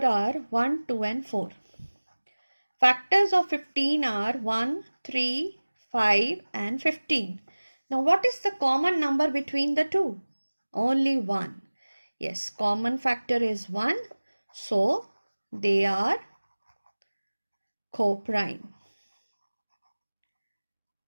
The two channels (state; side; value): inverted; both; correlation -1.00